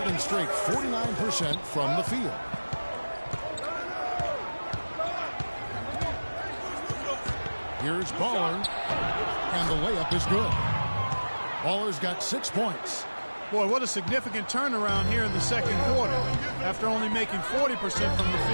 straight 49% from the field. Here's Baller, and the layup is good. Baller's got 6 points. Boy, what a significant turnaround here in the second quarter after only making 40% from the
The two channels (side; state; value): both; inverted; correlation -1.00